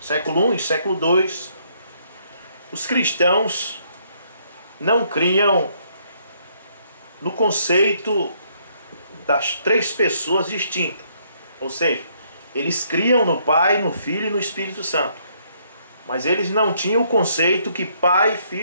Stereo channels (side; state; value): both; inverted; correlation -0.69